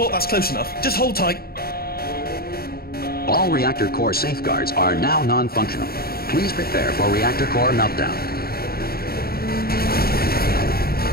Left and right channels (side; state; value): right; late; 0.44 ms